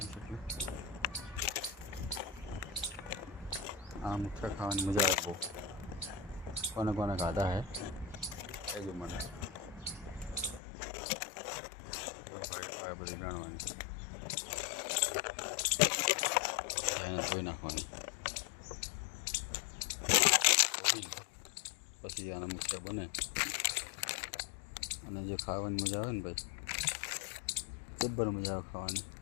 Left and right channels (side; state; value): right; drops out; at 10.6 s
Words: છે. એટલે આ મુઠિયા ખાવાની મજા આવે બહુ. કોને કોને ખાધા હે કહેજો મને. ભાઈ આ બધી વેણવાની એને ધોઈ નાખવાની, પછી આના મુઠિયા બને. અને જે ખાવાની મજા આવે ને ભાઈ, જબ્બર મજા આવે ખાવાની.